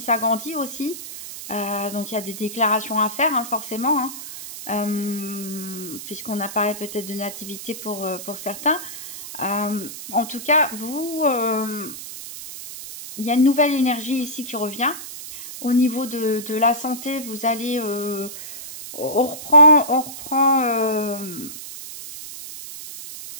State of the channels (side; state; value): right; noise; hiss, 11 dB below the sound